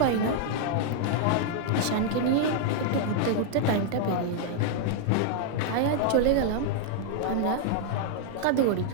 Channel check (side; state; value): both; different; correlation 0.00